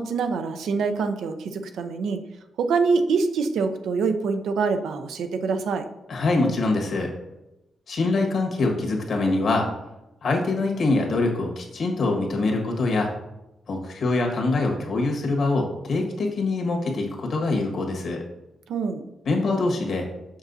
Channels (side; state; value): both; normal; correlation 0.80